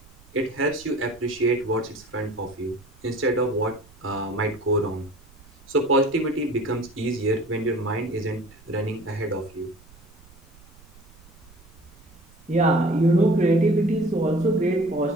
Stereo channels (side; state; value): right; noise; rumble, 25 dB below the sound